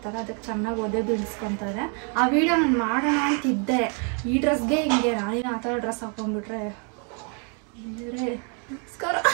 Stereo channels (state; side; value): quieter; left; 38.6 dB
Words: ಅದಕ್ಕೆ ಚೆನ್ನಾಗಿ ಒದೆ ಬೀಳಿಸ್ಕೊತಾರೆ. ಆ ವಿಡಿಯೋ ನಾನು ಮಾಡೋಣ ಅಂತಿದ್ದೆ. ಈ ಡ್ರೆಸ್ಗೆ ಹಿಂಗೆ ನಾನೇನು ಆ ಥರ ಡ್ರೆಸ್ ಹಾಕೊಂಡ್ಬಿಟ್ರೆ ನಮಸ್ಕಾರ.